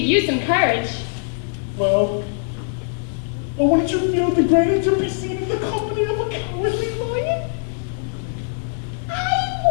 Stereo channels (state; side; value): silent; right; 65 dB below the other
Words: you some courage. Well, wouldn't you feel degraded to be seen in the company of a cowardly lion?